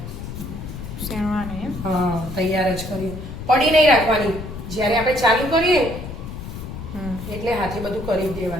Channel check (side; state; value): left; noise; rumble, 9 dB below the sound